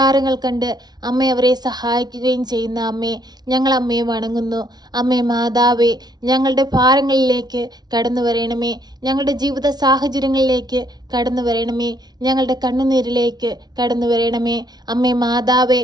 കണ്ട് അമ്മ അവരെ സഹായിക്കുകയും ചെയ്യുന്ന അമ്മേ, ഞങ്ങൾ അമ്മയെ വണങ്ങുന്നു. അമ്മേ മാതാവേ, ഞങ്ങളുടെ ഭാരങ്ങളിലേക്ക് കടന്നു വരണമേ, ഞങ്ങളുടെ ജീവിത സാഹചര്യങ്ങളിലേക്ക് കടന്നു വരണമേ, ഞങ്ങളുടെ കണ്ണുനീരിലേക്ക് കടന്നു വരണമേ. അമ്മേ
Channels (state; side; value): late; left; 0.19 ms